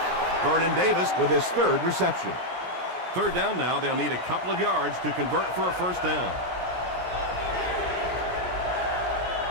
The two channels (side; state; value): left; late; 17 ms